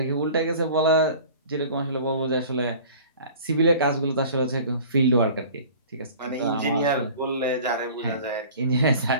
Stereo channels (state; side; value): inverted; both; correlation -0.44